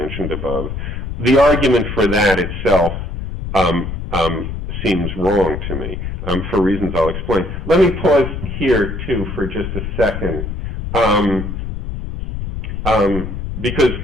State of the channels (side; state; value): left; noise; rumble, 6 dB below the sound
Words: above, the argument for that itself seems wrong to me, for reasons I'll explain. Let me pause here, too, for just a second, because